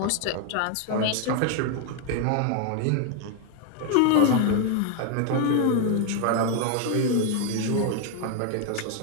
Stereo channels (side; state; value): both; different; correlation 0.00